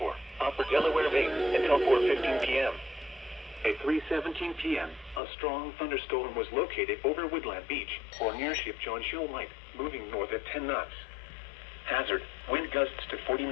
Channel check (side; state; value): right; drops out; at 5.2 s